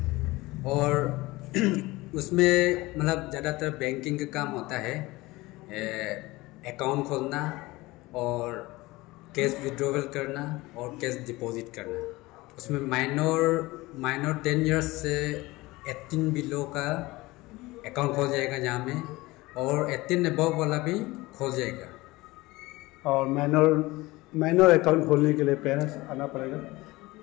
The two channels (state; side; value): quieter; right; 20.7 dB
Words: और उसमें मतलब ज़्यादातर बैंकिंग का काम होता है, अकाउंट खोलना और कैश विड्रॉवल करना और कैश डिपॉजिट करना। उसमें माइनर 10 इयर्स से 18 बिलो का अकाउंट खोल जाएगा जहाँ में, और 18 अबव वाला भी खोल जाएगा। और माइनर अकाउंट खोलने के लिए पेरेंट्स आना पड़ेगा?